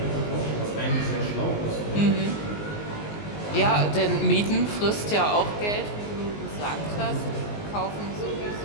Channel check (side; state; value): right; late; 19 ms